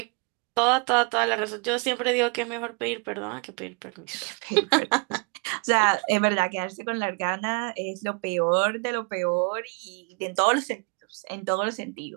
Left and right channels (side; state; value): left; quieter; 33.3 dB